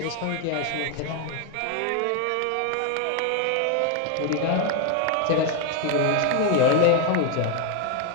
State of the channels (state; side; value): different; both; correlation 0.01